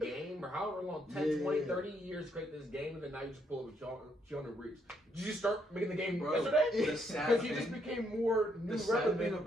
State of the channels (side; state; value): both; normal; correlation 0.74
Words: or however long, 10, Yeah. 20, 30 years to create this game, and then now you just pull it with Keanu Reeves. Did you start making the game Bro, yesterday? the sad Because he just thing- became more new the sad relevant thing